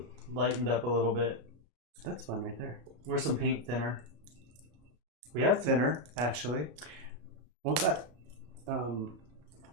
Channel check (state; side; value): late; left; 34 ms